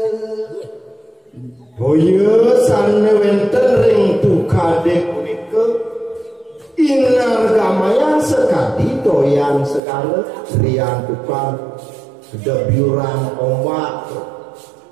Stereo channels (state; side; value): drops out; left; at 9.8 s